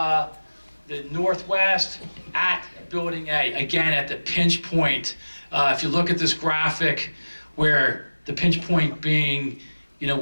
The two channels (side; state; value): both; inverted; correlation -1.00